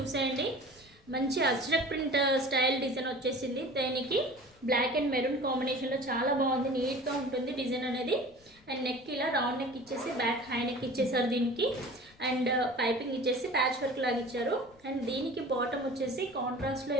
మంచి అజ్రక్ ప్రింట్ స్టైల్ డిజైన్ వచ్చేసింది. దీనికి బ్లాక్ అండ్ మెరూన్ కాంబినేషన్లో చాలా బాగుంది, నీట్గా ఉంటుంది డిజైన్ అనేది. అండ్ నెక్ ఇలా రౌండ్ నెక్ ఇచ్చేసి బ్యాక్ హై నెక్ ఇచ్చేసారు దీనికి. అండ్ పైపింగ్ ఇచ్చేసి ప్యాచ్ వర్క్ లాగా ఇచ్చారు. అండ్ దీనికి బాటమ్ వచ్చేసి కాంట్రాస్ట్లో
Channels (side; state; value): left; noise; rumble, 29 dB below the sound